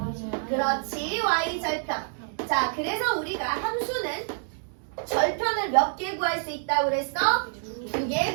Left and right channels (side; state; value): left; silent; digital silence